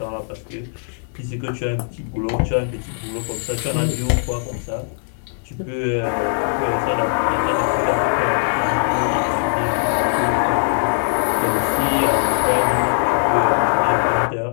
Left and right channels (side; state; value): right; silent; digital silence